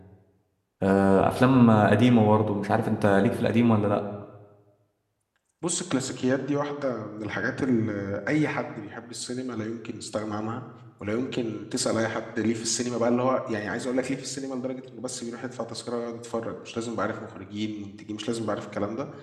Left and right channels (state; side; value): identical; both; correlation 1.00